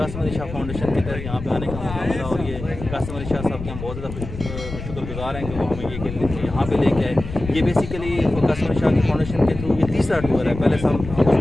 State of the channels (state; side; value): noise; left; rumble, 10 dB below the sound